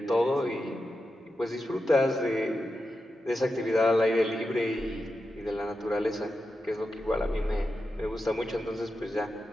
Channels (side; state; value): both; normal; correlation 0.89